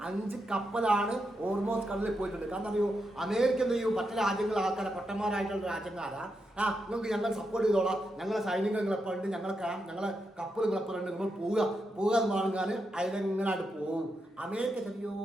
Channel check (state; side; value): normal; both; correlation 0.85